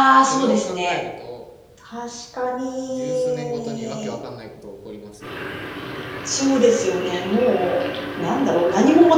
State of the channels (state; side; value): identical; both; correlation 1.00